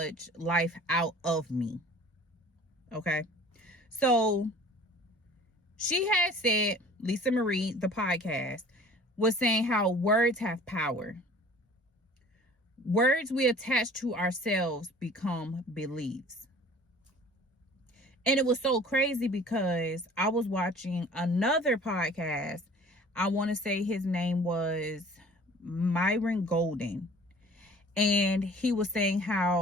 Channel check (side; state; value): both; normal; correlation 0.48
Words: life out of me. Okay. So she had said, Lisa Marie, the podcast, was saying how words have power. Words we attach to ourselves become beliefs. And it was so crazy because I was watching another podcast. I want to say his name was Myron Golden. And he was saying